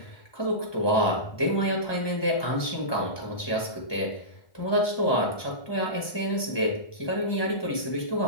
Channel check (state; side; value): late; right; 1.2 ms